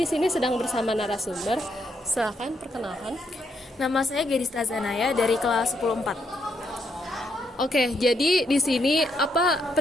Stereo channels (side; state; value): both; normal; correlation 0.76